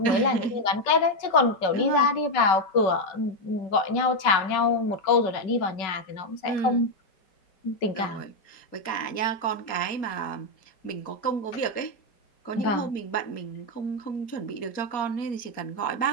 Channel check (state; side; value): late; right; 5.3 ms